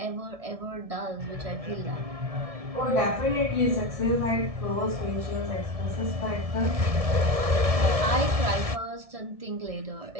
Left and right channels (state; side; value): late; left; 1.7 ms